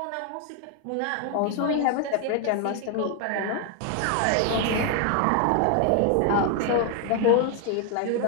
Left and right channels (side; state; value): both; different; correlation 0.00